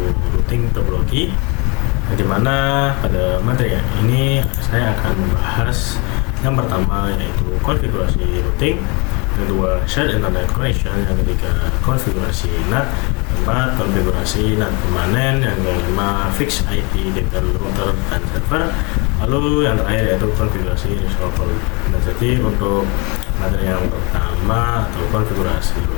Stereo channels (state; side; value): quieter; right; 30.1 dB